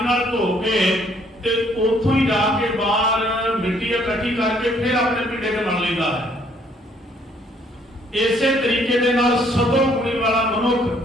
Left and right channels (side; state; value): both; normal; correlation 0.64